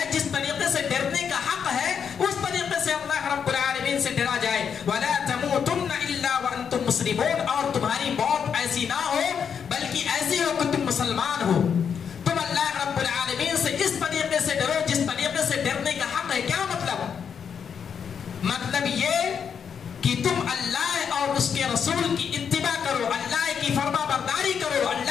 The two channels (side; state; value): right; quieter; 7.2 dB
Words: جس طریقے سے ڈرنے کا حق ہے، اس طریقے سے اللہ رب العالمین سے ڈرا جائے۔ وَلَا تَمُوتُنَّ إِلَّا وَأَنْتُمْ مُسْلِمُونَ، اور تمہاری موت ایسی نہ ہو بلکہ ایسی ہو کہ تم مسلمان ہو۔ تم اللہ رب العالمین سے اس طریقے سے ڈرو جس طریقے سے ڈرنے کا حق ہے۔ کیا مطلب؟ مطلب یہ کہ تم اللہ اور اس کے رسول کی اتباع کرو، اللہ کی فرما برداری کرو،